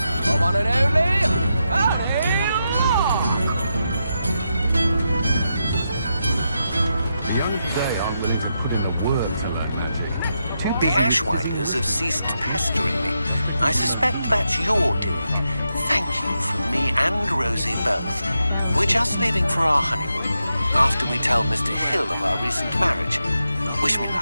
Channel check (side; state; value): both; inverted; correlation -0.85